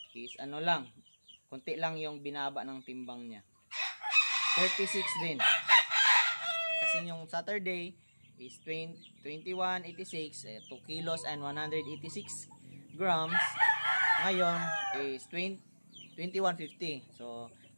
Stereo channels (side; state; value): both; inverted; correlation -1.00